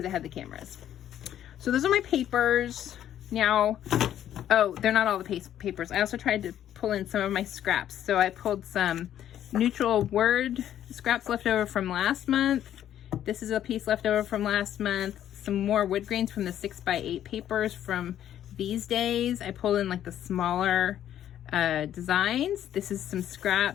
it had the cameras. So those are my papers. Now, Oh, they're not all the papers. I also tried to pull in some of my scraps. So I pulled some neutral word scraps left over from last month. This is a piece left over from last month. Some more wood grains from the 6x8 papers from these days. I pulled in like the smaller designs. This is some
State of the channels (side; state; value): right; quieter; 11.0 dB